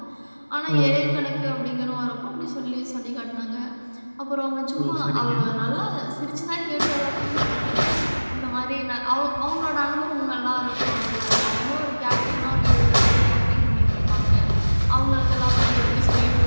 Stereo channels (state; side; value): inverted; both; correlation -1.00